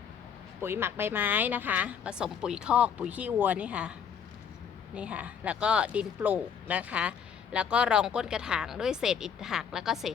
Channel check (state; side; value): quieter; right; 7.5 dB